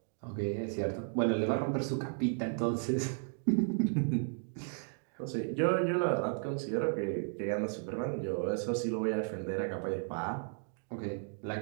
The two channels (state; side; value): silent; left; 55 dB below the other